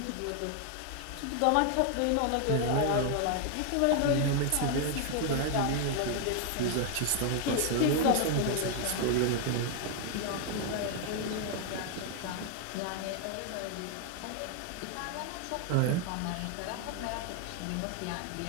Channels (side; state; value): both; different; correlation 0.00